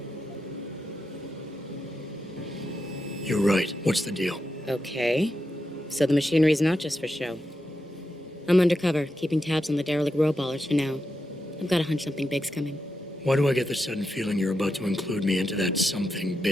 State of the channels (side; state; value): both; normal; correlation 0.87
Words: You're right. What's the deal? Okay. So the machinery's not just for show. I'm undercover, keeping tabs on the derelict row ballers for now. I've got a hunch something big's coming. Why do I get the sudden feeling you're about to include me into that something